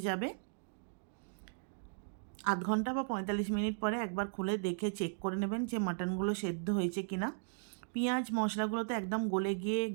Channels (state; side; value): silent; left; digital silence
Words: যাবে। আধ ঘন্টা বা 45 মিনিট পরে একবার খুলে দেখে চেক করে নেবেন যে মাটনগুলো সেদ্ধ হয়েছে কি না। পেঁয়াজ মশলাগুলো তো একদম গলে গিয়ে